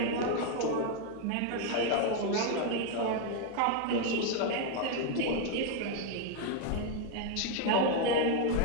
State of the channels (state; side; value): different; both; correlation 0.01